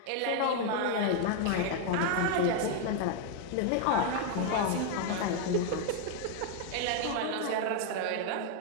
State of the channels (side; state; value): both; different; correlation 0.00